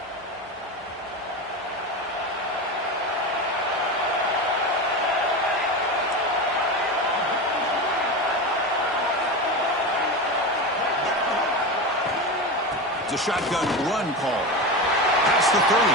A shotgun run call. Past the 30.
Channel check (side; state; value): both; normal; correlation 0.22